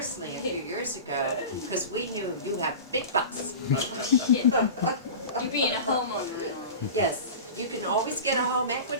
a few years ago, because we knew you have big bucks. Yeah. You being a homeowner and all. Yes, you can always get a home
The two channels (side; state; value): both; inverted; correlation -0.32